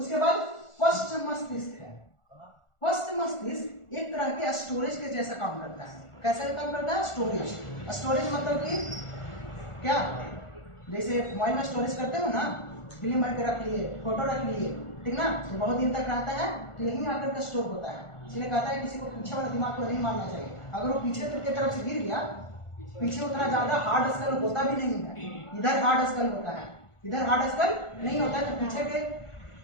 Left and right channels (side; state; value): right; late; 1.4 ms